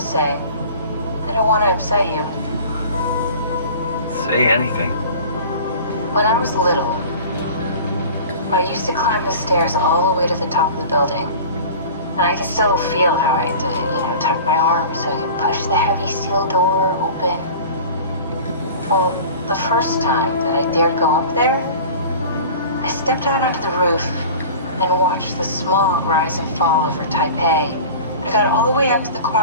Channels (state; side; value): inverted; both; correlation -0.40